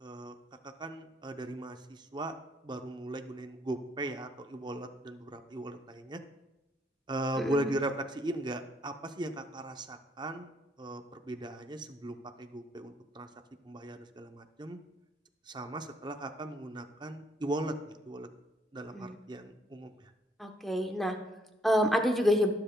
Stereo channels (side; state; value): both; normal; correlation 0.68